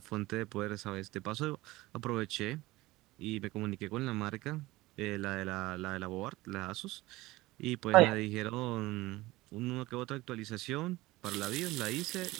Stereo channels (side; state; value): left; quieter; 19.3 dB